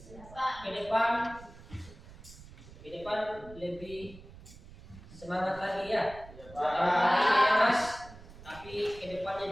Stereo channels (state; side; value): noise; right; rumble, 18 dB below the sound